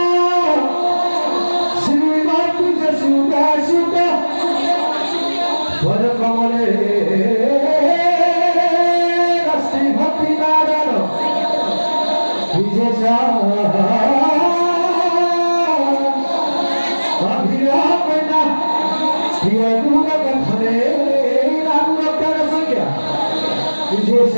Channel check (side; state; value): both; inverted; correlation -1.00